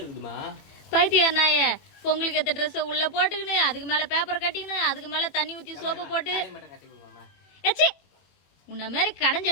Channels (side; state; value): right; late; 21 ms